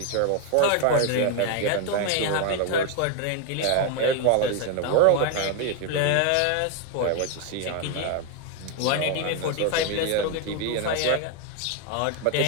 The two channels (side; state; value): both; different; correlation 0.01